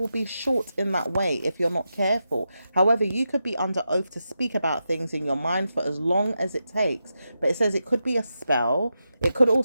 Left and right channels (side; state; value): both; inverted; correlation -0.88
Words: be short in that way if you're not careful. However, you could be under oath to speak about things in your mind for as long as it takes. But it says it could be a spell. It could